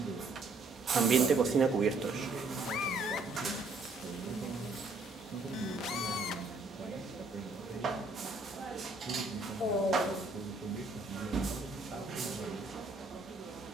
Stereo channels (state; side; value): quieter; left; 3.4 dB